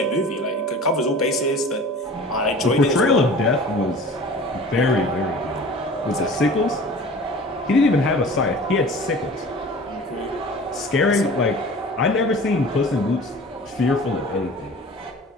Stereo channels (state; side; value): normal; both; correlation 0.41